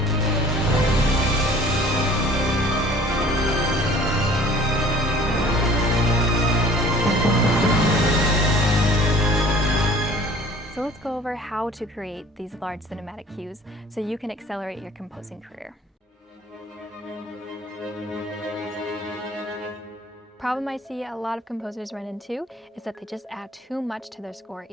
So let's go over how to create these large cinematic cues so you can accelerate your composing career. Problem I see a lot of composers run into is that they just add too much to their score,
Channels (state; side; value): normal; both; correlation 0.51